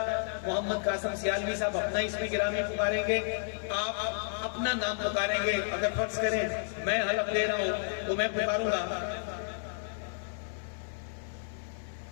محمد قاسم سیالوی صاحب اپنا اسم گرامی پکاریں گے. آپ اپنا نام پکاریں گے. اگر فرض کریں میں حلف دے رہا ہوں تو میں پکاروں گا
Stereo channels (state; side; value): silent; right; 57 dB below the other